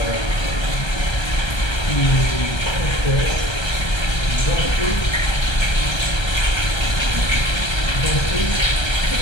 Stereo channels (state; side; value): late; right; 1.3 ms